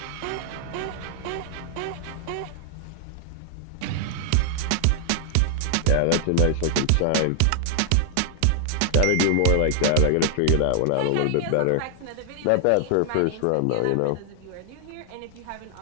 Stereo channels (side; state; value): both; different; correlation -0.01